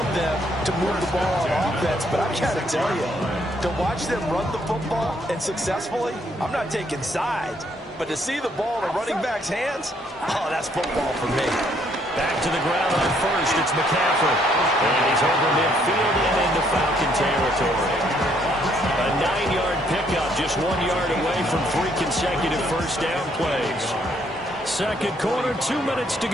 them to move the ball on offense. But I got to tell you, to watch them run the football and successfully, I'm not taking sides. But to see the ball in a running back's hands, oh, that's football for me. Back to the ground on first, it's McCaffrey. And he's over midfield and into Falcon territory. A 9-yard pickup, just 1 yard away from 3 consecutive first down plays. Second quarter, 2 minutes to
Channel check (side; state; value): both; normal; correlation 0.69